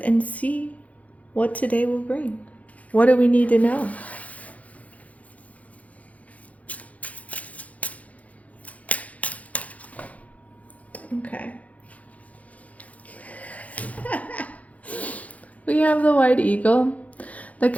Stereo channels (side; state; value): right; late; 0.069 ms